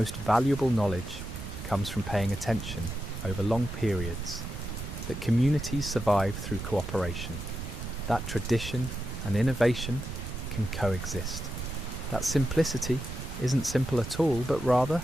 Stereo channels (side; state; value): right; noise; rumble, 9 dB below the sound